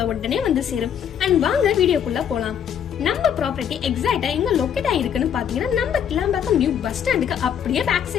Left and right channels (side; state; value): right; quieter; 8.6 dB